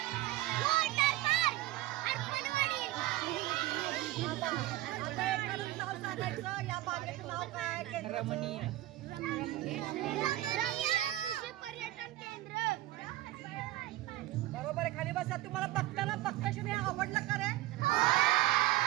आता एखादं नाव सांगायचं. या बागेचं नाव काय? रमणीय पर्यटन केंद्र. बरोबर आहे. खाली बसा. तुम्हाला बघताना बघताशी आवडलं का रे?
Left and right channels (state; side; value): quieter; left; 16.4 dB